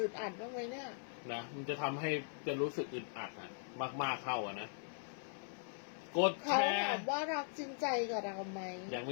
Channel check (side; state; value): right; silent; 51 dB below the other